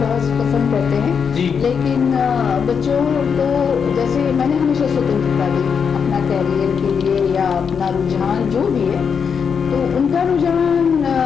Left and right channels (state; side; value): quieter; right; 6.5 dB